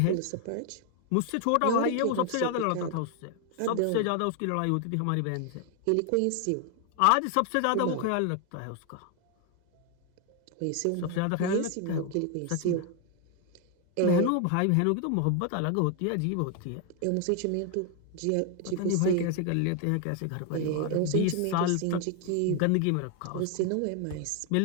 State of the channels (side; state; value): both; different; correlation 0.01